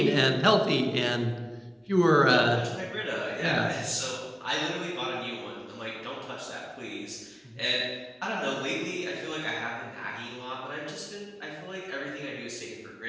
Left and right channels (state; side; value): identical; both; correlation 1.00